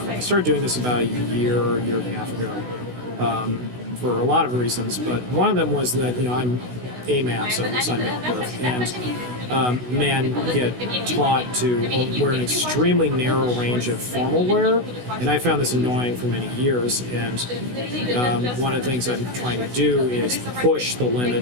started doing this about a year and a half ago for a lot of reasons. But one of them was that I'm AMAP, so I'm male at birth, and men get taught to wear an extremely narrow range of formal wear, and I found this annoying for many years. And one of the things I'm trying to do is push the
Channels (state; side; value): late; left; 16 ms